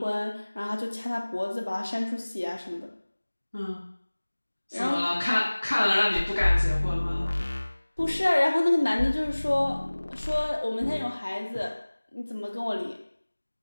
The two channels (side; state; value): both; inverted; correlation -1.00